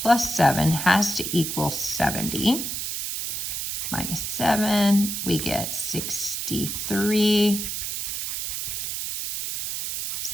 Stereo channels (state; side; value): noise; right; hiss, 3 dB below the sound